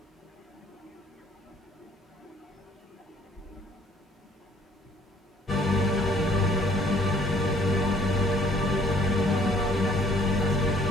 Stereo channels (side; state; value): both; normal; correlation 0.59